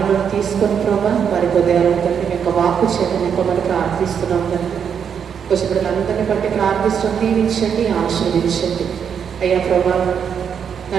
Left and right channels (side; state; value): left; quieter; 7.5 dB